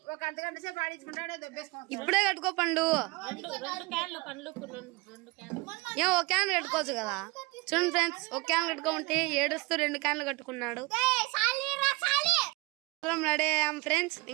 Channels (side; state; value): left; quieter; 24.6 dB